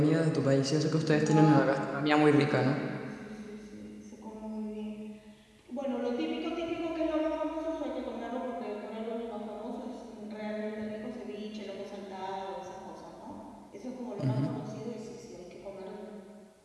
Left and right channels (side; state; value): both; identical; correlation 1.00